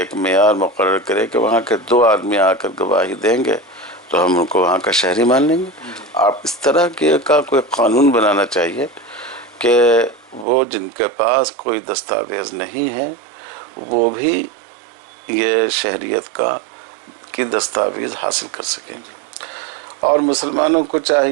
معیار مقرر کرے کہ وہاں کے 2 آدمی آ کر گواہی دیں گے تو ہم ان کو وہاں کا شہری مان لیں گے. آپ اس طرح کا کوئی قانون بنانا چاہیے کہ وہ جن کے پاس کوئی دستاویز نہیں ہے وہ بھی یہ شہریت کی دستاویز حاصل کر سکیں. اور مسلمانوں کو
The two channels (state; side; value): drops out; left; at 10.5 s